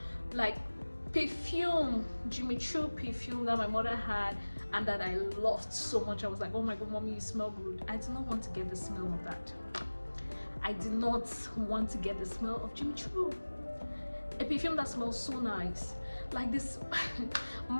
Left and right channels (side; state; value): both; inverted; correlation -1.00